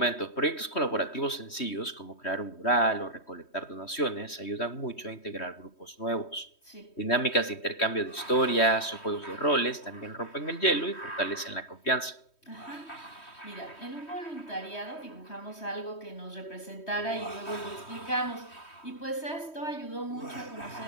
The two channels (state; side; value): late; right; 3.1 ms